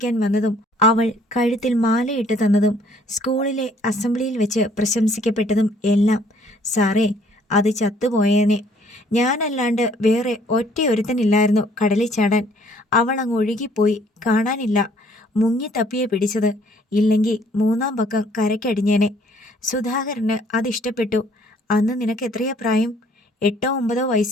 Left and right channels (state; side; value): normal; both; correlation 0.61